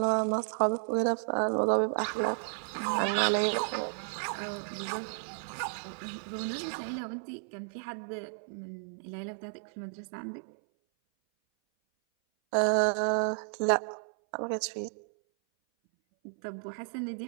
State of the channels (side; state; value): left; silent; 56 dB below the other